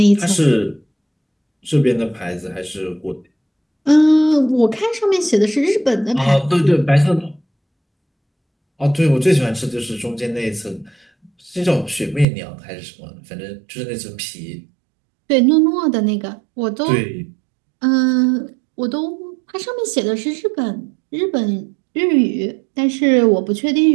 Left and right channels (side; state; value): left; drops out; at 12.2 s